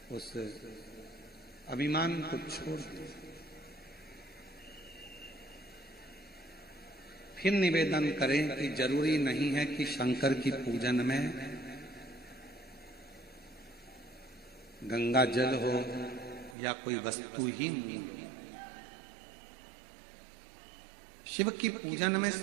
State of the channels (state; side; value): drops out; left; at 16.6 s